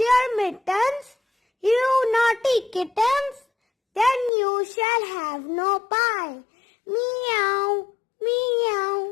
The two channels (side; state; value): right; drops out; at 4.3 s